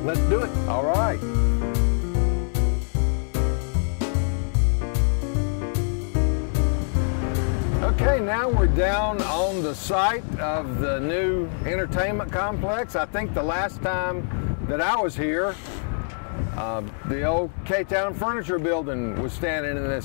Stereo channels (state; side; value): silent; right; digital silence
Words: do it. All right. Okay, now we're down on the site of the new entertainment complex. I think the last time that I was here, the old K-Town Furniture Building was standing in